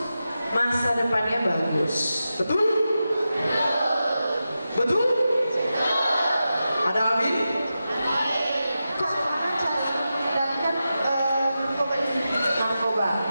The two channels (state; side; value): inverted; both; correlation -0.91